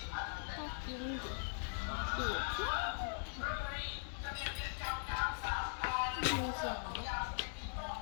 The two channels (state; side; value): silent; right; digital silence